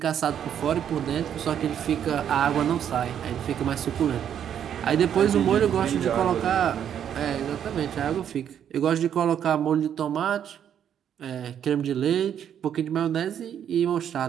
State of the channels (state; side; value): quieter; left; 9.2 dB